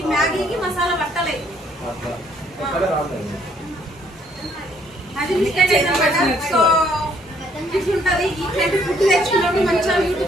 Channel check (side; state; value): both; normal; correlation 0.66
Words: మ్యాగీకి మసాలా పట్టలేదు. అది మిస్టేక్ అయిందన్నమాట. సో ఇట్లుంటది. ఇట్లాంటి ఫుడ్ తెచ్చుకున్నప్పుడు మంచిగా